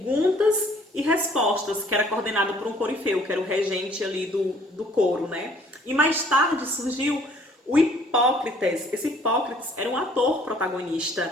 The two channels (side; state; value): both; normal; correlation 0.59